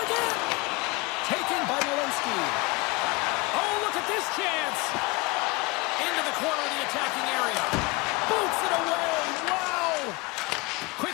Taken by Malinsky. Oh, look at this chance. Into the corner of the attacking area. Boots it away. Wow. Quick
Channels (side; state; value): right; quieter; 25.3 dB